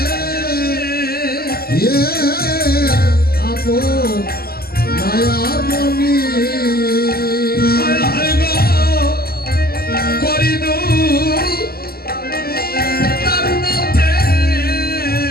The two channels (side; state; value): right; late; 0.45 ms